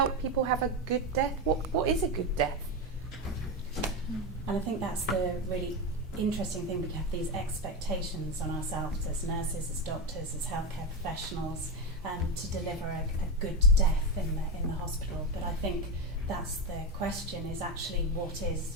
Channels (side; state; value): both; normal; correlation 0.14